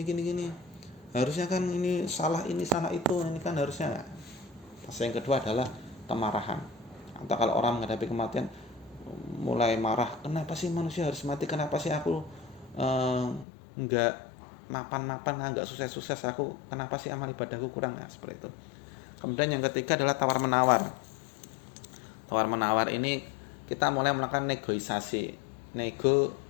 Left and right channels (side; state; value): right; drops out; at 13.5 s